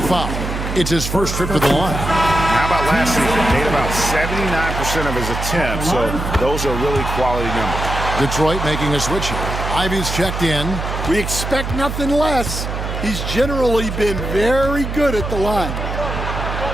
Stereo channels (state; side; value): noise; right; hum, 4 dB below the sound